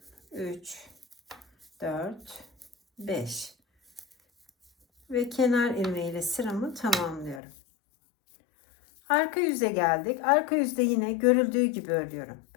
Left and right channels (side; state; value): right; drops out; at 7.4 s